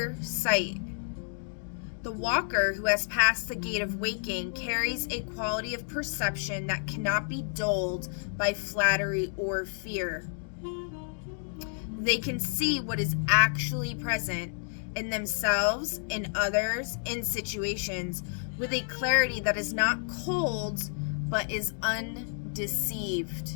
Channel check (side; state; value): right; silent; digital silence